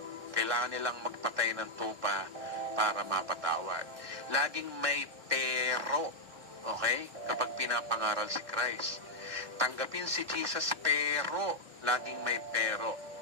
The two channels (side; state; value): left; late; 1.6 ms